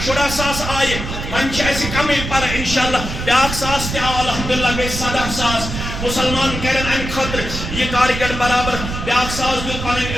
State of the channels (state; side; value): noise; right; rumble, 6 dB below the sound